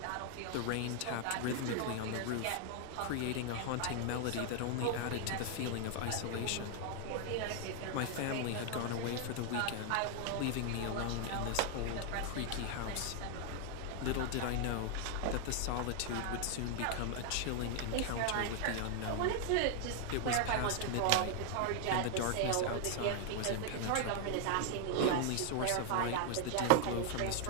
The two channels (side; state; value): both; different; correlation 0.00